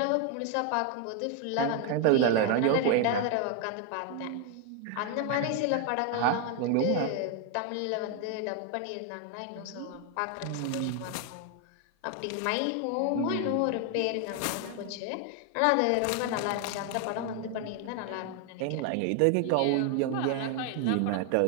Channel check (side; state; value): both; different; correlation 0.01